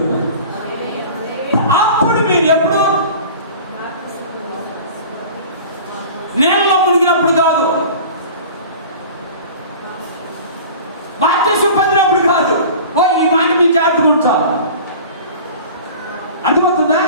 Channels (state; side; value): inverted; both; correlation -0.40